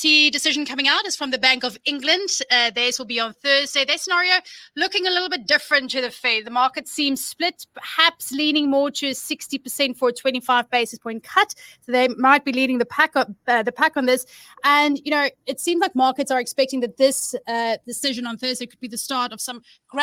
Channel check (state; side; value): identical; both; correlation 1.00